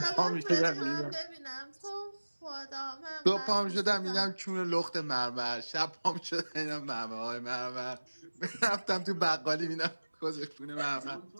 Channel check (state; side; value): inverted; both; correlation -1.00